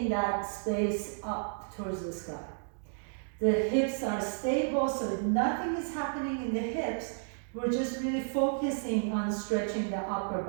that space up towards the sky. The hips are stable, so nothing is happening in the hips. We're just really focusing on stretching the upper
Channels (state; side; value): silent; left; digital silence